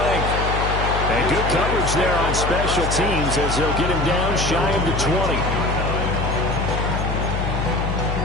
And good coverage there on special teams as they'll get him down shy of the 20.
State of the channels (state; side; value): noise; left; hum, 2 dB below the sound